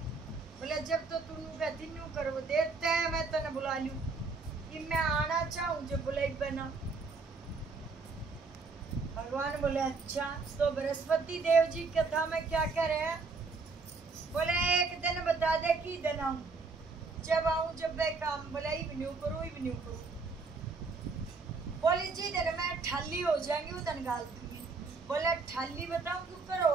बोले जब तो तू कहती न्यू करो देते हैं मैं तेने बुला लूं कि मैं आना चाहूँ। जब बोला इतना भगवान बोले अच्छा। तो बृहस्पति देव जी कथा में क्या कह रहे हैं? बोले एक दिन बता दे कि दिन आऊं, जब आऊं जब मैं काम। बोला इवन्यू करूं। बोली जी दिन मैं ठाली हो जाएंगी उधन गाल दूंगी। बोला ठाली बताऊं क्यों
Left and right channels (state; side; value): quieter; left; 4.2 dB